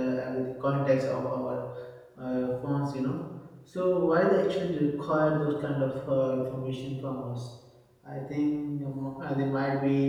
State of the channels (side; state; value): both; identical; correlation 1.00